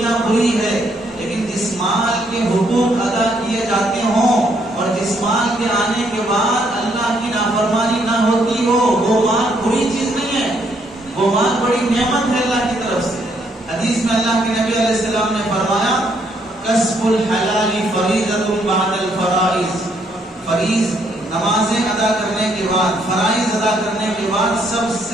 بری ہے۔ لیکن جس مال کے حقوق ادا کیے جاتے ہوں اور جس مال کے آنے کے بعد اللہ کی نافرمانی نہ ہوتی ہو، وہ مال بری چیز نہیں ہے، وہ مال بڑی نعمت ہے اللہ کی طرف سے۔ حدیث میں اللہ کے نبی علیہ السلام نے فرمایا کسب الحلال فریضۃ بعد الفرائض، فریض نمازیں ادا کرنے کے بعد، فرائض ادا کرنے کے بعد سب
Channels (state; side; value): normal; both; correlation 0.71